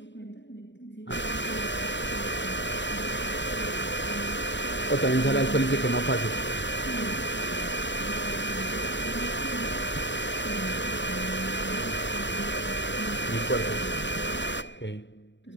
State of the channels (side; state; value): right; late; 0.53 ms